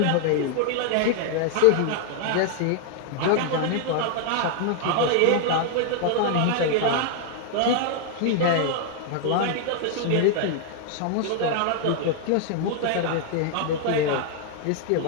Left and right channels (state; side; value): different; both; correlation 0.00